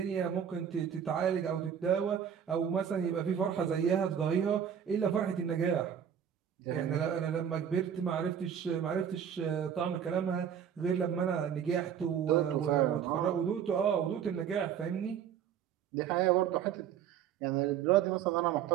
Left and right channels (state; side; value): quieter; left; 8.6 dB